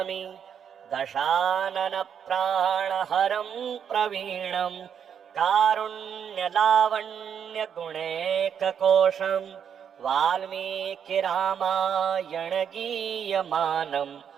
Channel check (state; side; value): quieter; left; 8.0 dB